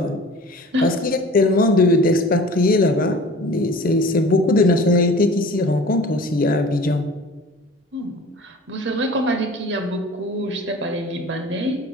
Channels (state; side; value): normal; both; correlation 0.42